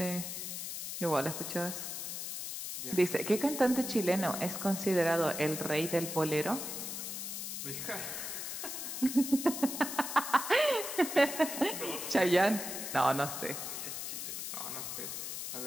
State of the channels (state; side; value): noise; left; hiss, 5 dB below the sound